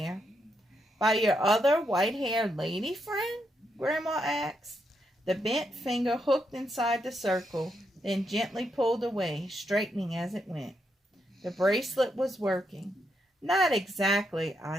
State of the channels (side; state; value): both; normal; correlation 0.80